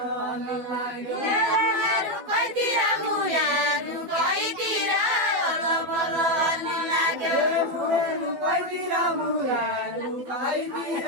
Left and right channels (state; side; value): late; left; 12 ms